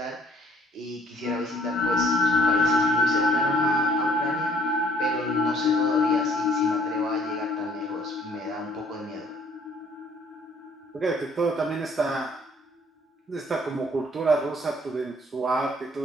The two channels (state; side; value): normal; both; correlation 0.60